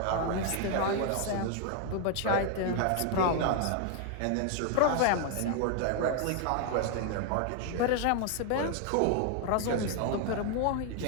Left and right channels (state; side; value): different; both; correlation 0.00